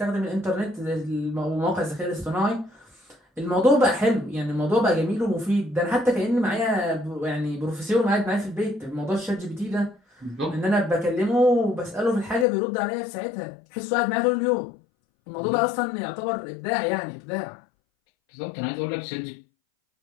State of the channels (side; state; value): right; drops out; at 12.5 s